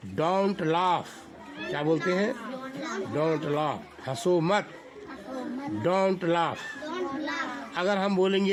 Don't laugh. क्या बोलते हैं? Don't laugh. हंसो मत, डोंट लाफ। अगर हम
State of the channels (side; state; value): both; identical; correlation 1.00